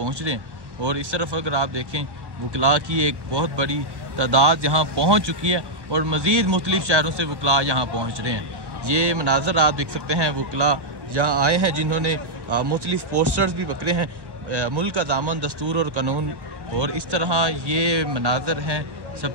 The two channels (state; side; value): late; left; 1.1 ms